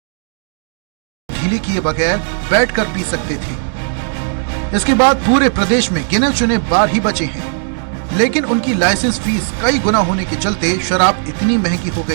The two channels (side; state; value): left; silent; digital silence